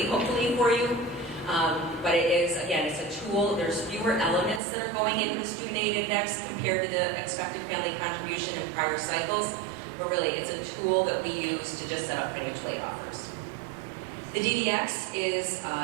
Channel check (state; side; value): drops out; left; at 4.6 s